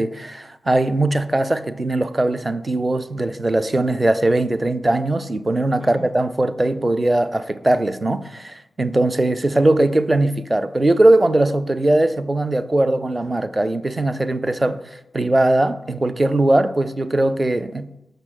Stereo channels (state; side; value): normal; both; correlation 0.96